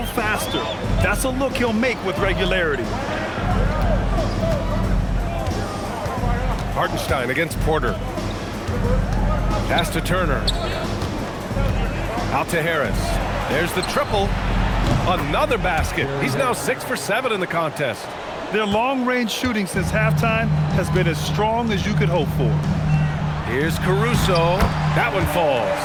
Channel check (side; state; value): both; identical; correlation 1.00